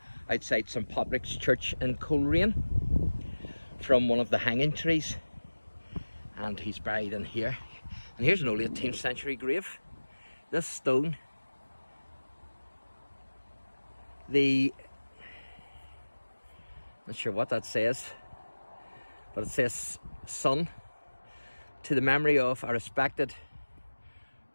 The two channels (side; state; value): both; inverted; correlation -1.00